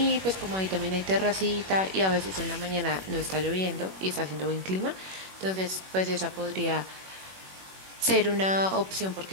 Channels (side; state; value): left; late; 21 ms